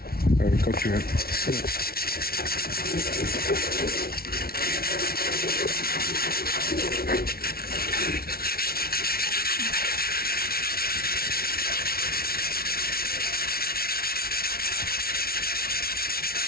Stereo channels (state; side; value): late; right; 0.44 ms